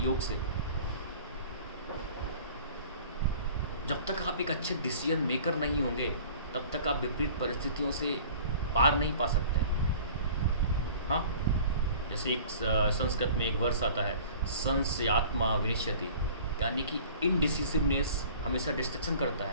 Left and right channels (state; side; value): inverted; both; correlation -0.46